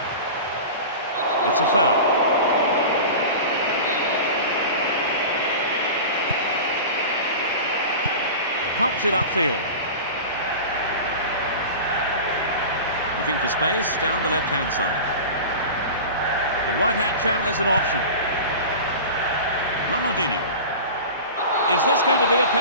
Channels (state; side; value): inverted; both; correlation -0.32